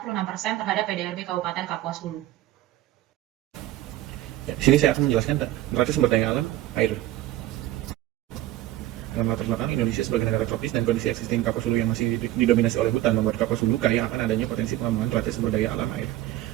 terhadap PDRB Kabupaten Kapuas Hulu. Ya, di sini saya akan menjelaskan neraca sumber daya alam air. Dalam latar belakang Indonesia sebagai negara tropis dan kondisi existing Kapuas Hulu yang masih didominasi oleh hutan membuat Kapuas Hulu kaya akan adanya potensi pengembangan neraca sumber daya alam air.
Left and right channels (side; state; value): left; quieter; 14.7 dB